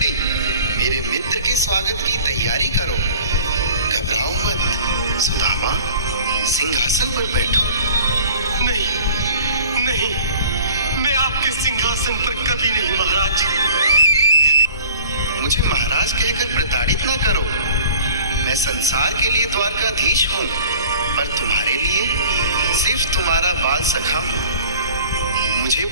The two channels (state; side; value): inverted; both; correlation -0.46